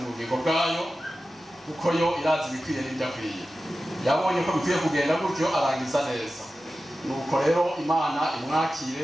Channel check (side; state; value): both; normal; correlation 0.94